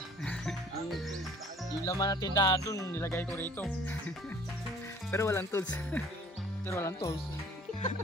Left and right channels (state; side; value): normal; both; correlation 0.52